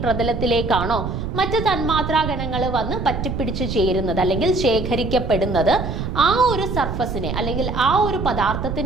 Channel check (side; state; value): right; noise; rumble, 4 dB below the sound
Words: പ്രതലത്തിലേക്കാണോ മറ്റ് തന്മാത്രാ ഗണങ്ങൾ വന്ന് പറ്റിപ്പിടിച്ച് ചേരുന്നത് അല്ലെങ്കിൽ ശേഖരിക്കപ്പെടുന്നത്, ആ ഒരു സർഫസിനെ അല്ലെങ്കിൽ ആ ഒരു